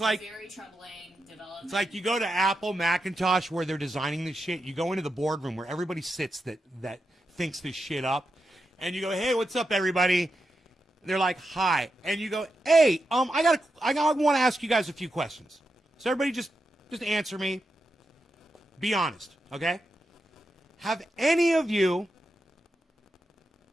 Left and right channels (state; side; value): normal; both; correlation 0.87